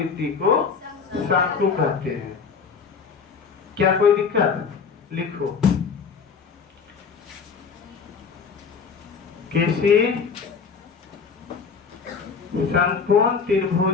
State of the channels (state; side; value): quieter; right; 5.7 dB